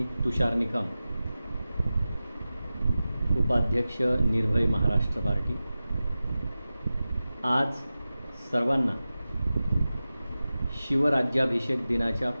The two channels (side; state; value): both; inverted; correlation -0.95